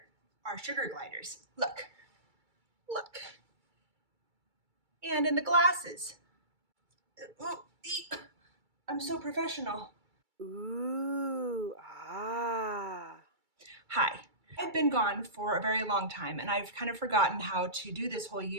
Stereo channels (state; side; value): late; left; 2.3 ms